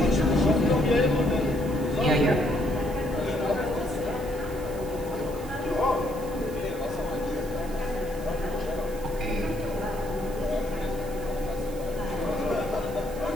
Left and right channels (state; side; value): noise; right; hiss, 18 dB below the sound